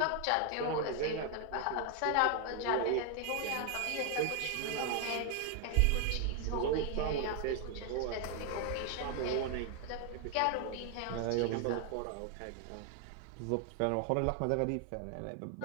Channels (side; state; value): both; different; correlation 0.00